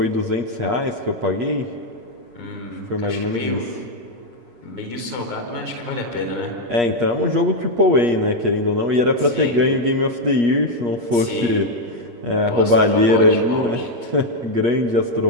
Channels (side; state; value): left; late; 8.3 ms